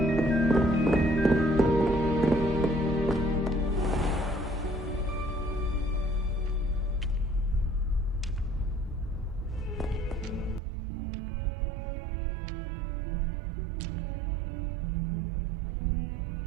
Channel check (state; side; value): drops out; left; at 10.6 s